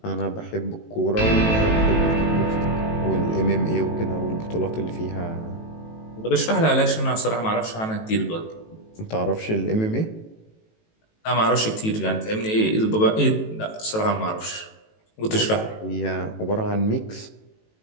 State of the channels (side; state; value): right; late; 18 ms